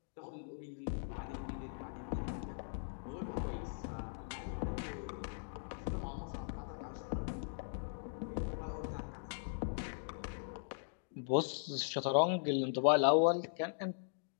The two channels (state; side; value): silent; right; digital silence